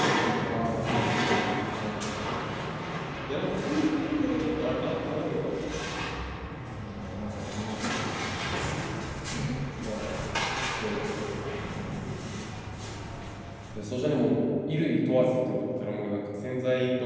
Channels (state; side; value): identical; both; correlation 1.00